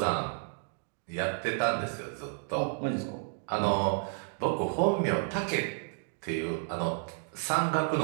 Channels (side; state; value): left; silent; 57 dB below the other